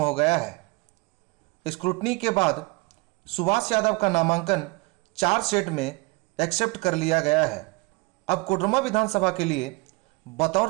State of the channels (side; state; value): left; quieter; 26.3 dB